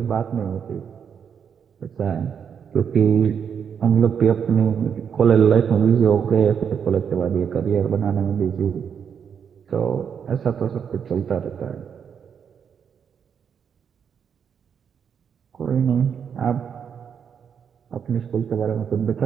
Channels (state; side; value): quieter; left; 7.4 dB